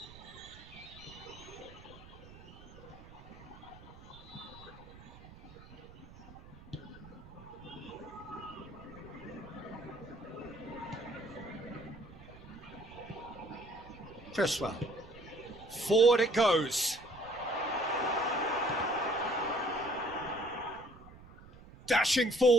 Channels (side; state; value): right; noise; rumble, 19 dB below the sound